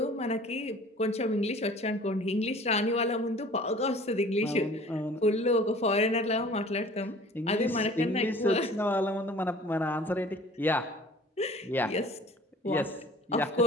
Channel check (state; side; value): normal; both; correlation 0.47